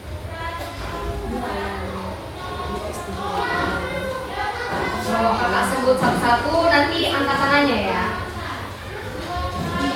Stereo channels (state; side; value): identical; both; correlation 1.00